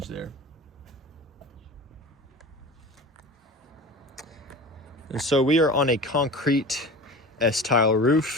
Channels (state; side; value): normal; both; correlation 0.34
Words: there. And so we are on a concrete S-tile